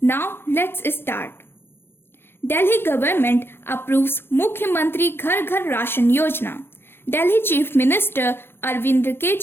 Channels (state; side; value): late; right; 0.11 ms